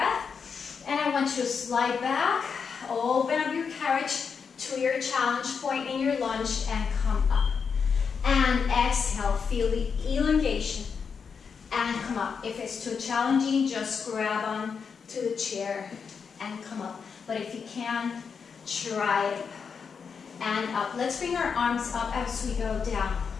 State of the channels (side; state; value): right; quieter; 6.0 dB